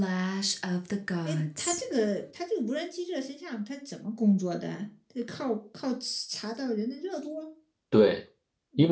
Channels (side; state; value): both; identical; correlation 1.00